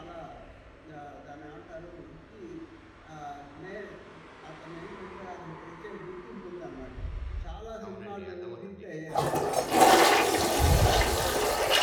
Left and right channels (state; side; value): identical; both; correlation 1.00